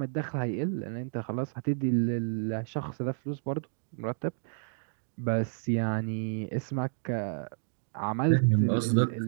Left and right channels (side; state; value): left; silent; digital silence